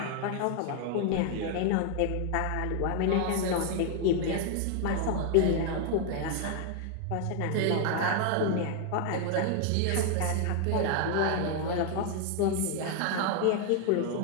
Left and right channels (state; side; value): different; both; correlation 0.00